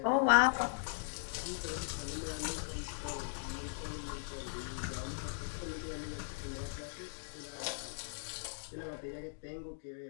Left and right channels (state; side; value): silent; right; digital silence